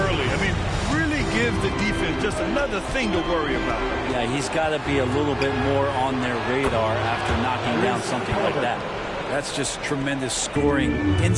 early. I mean, really gives the defense just another thing to worry about. Yeah, he's got to be a little bit more on their radar after knocking down something like that. That's just tremendous scoring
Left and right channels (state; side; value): identical; both; correlation 1.00